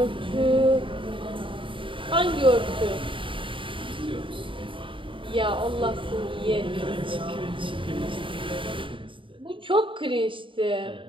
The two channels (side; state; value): left; late; 0.25 ms